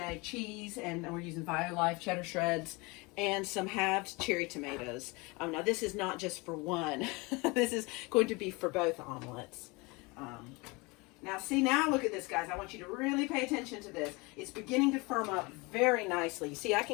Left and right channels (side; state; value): right; quieter; 26.1 dB